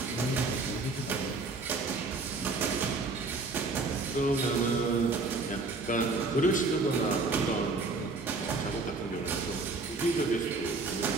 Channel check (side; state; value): left; quieter; 3.7 dB